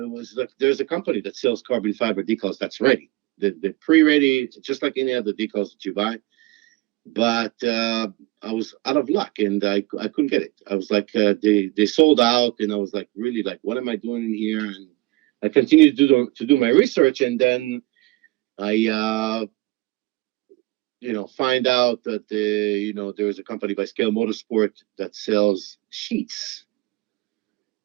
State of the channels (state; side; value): quieter; left; 21.6 dB